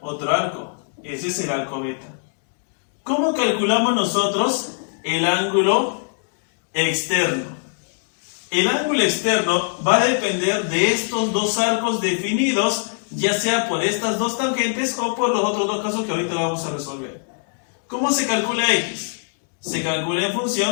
arco. Ese es el arco beta. ¿Cómo calculamos nosotros el ángulo externo? El ángulo externo va a depender de estos dos arcos definidos, ya sea por estas dos tangentes o por los otros dos casos que ahorita vamos a resolver. ¿Cómo se calcula x? Se calcula en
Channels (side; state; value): right; silent; digital silence